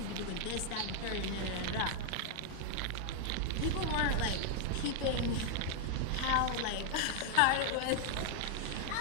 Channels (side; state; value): both; different; correlation 0.00